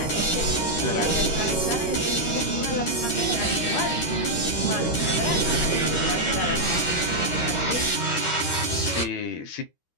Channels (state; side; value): late; right; 13 ms